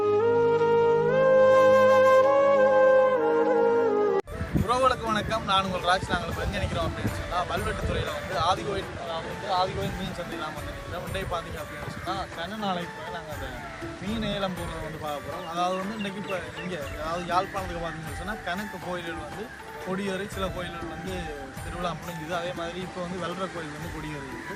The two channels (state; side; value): identical; both; correlation 1.00